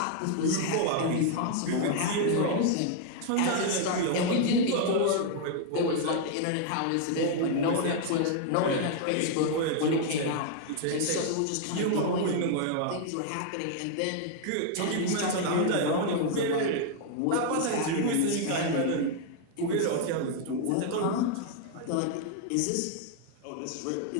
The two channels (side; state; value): both; different; correlation 0.00